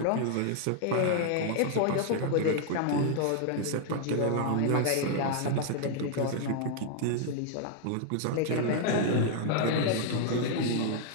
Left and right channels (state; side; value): different; both; correlation 0.00